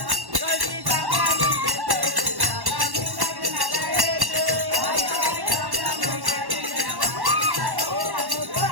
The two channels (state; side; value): late; left; 1.1 ms